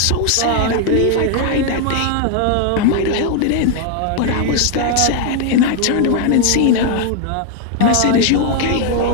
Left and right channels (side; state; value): both; different; correlation 0.00